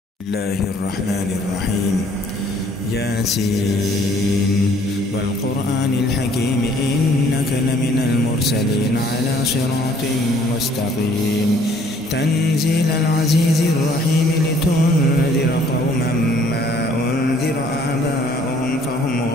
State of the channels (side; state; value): both; normal; correlation 0.59